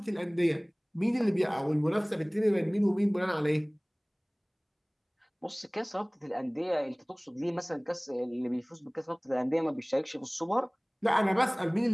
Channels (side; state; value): both; identical; correlation 1.00